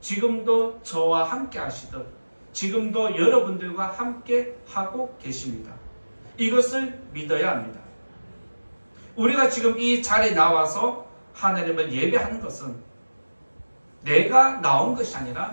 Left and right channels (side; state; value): both; inverted; correlation -1.00